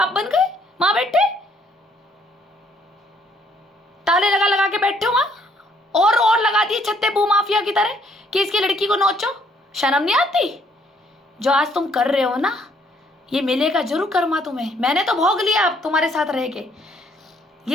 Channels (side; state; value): both; normal; correlation 0.66